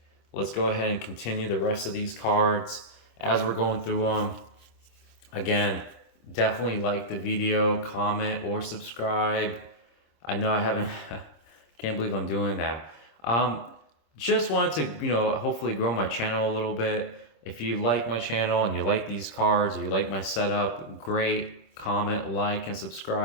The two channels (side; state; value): right; late; 26 ms